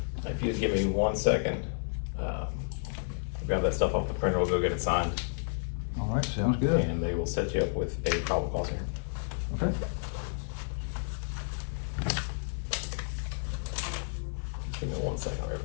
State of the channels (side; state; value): right; silent; digital silence